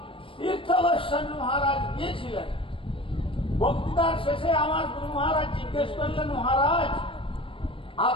তীর্থ গোস্বামী মহারাজ গিয়েছিলেন। বক্তৃতার শেষে আমার গুরু মহারাজ জিজ্ঞেস করলেন, মহারাজ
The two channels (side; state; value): right; late; 0.25 ms